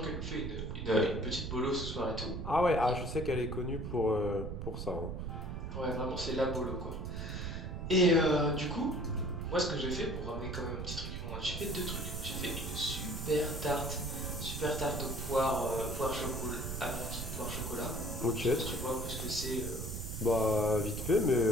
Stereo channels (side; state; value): right; noise; rumble, 5 dB below the sound